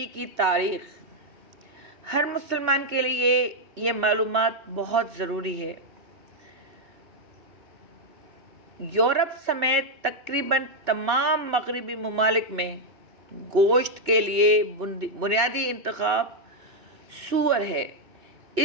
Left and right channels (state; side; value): late; left; 2.7 ms